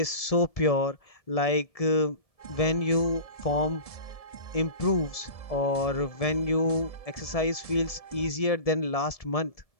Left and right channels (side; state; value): right; late; 1.7 ms